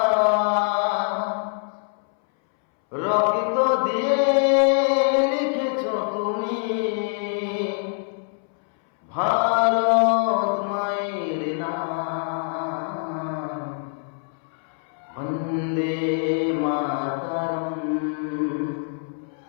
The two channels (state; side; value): silent; right; 62 dB below the other